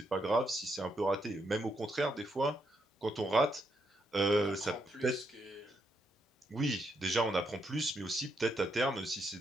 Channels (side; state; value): both; normal; correlation 0.78